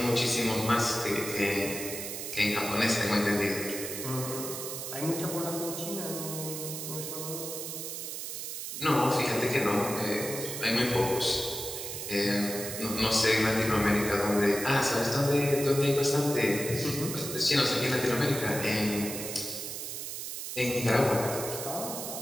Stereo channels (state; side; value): noise; right; hiss, 6 dB below the sound